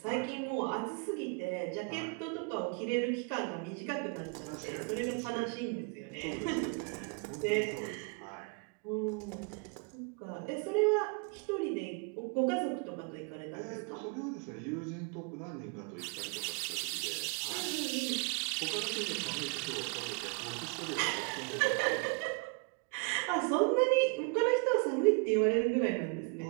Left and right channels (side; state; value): left; quieter; 34.3 dB